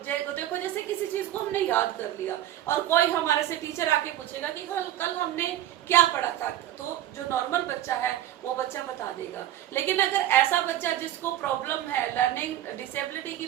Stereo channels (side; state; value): left; quieter; 12.6 dB